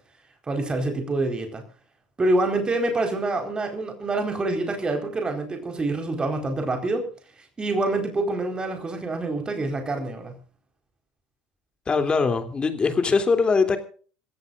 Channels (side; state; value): both; normal; correlation 0.75